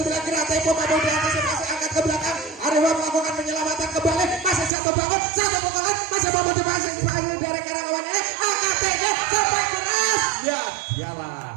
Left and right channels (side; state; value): left; drops out; at 4.7 s